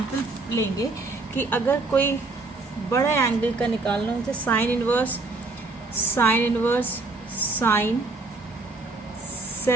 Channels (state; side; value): quieter; left; 3.4 dB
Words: लेंगे कि अगर कोई बड़े एंगल का निकालना हो, जैसे साइन इनवर्स साइन